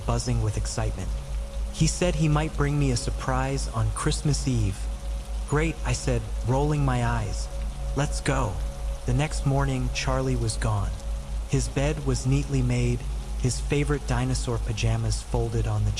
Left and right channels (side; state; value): both; identical; correlation 1.00